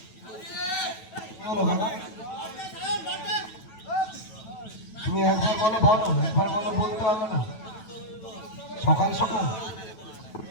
তুমি একবার বলো বলো, একবার বলো, বলতে হবে না। সকাল সকাল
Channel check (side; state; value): right; late; 9.2 ms